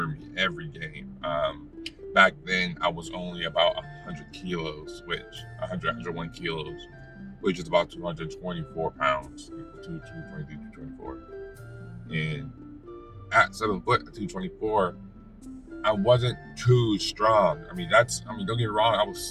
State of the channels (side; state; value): both; identical; correlation 1.00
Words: me every game. Back then, I was only about 100 kilos, 101 kilos, which is about 224 pounds, 223, 224. And at 7 foot, at 224, I wasn't too strong. Don't get me wrong, I was